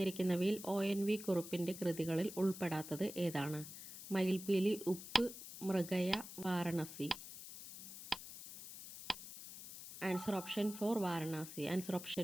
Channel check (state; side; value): noise; left; hiss, 12 dB below the sound